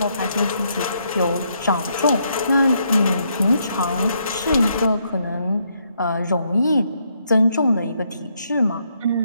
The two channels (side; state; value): both; inverted; correlation -0.75